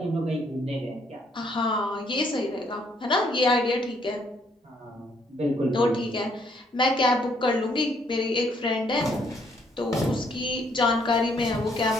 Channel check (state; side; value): normal; both; correlation 0.68